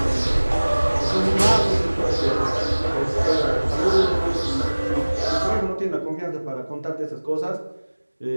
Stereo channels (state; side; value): inverted; both; correlation -1.00